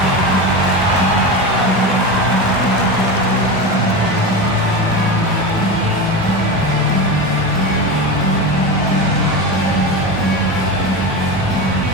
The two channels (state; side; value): normal; both; correlation 0.22